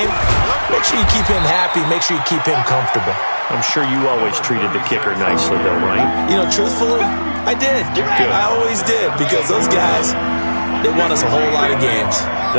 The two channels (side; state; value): both; inverted; correlation -1.00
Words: Make sure you keep him happy. Make sure you keep him comfortable. I'm sure you always treated the kicker nicely, though, right? You know, truthfully, I did. Good. I always did because those guys, they won us a whole lot of games.